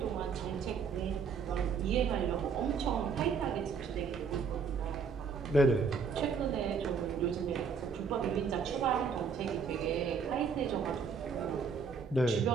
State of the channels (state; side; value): quieter; left; 5.7 dB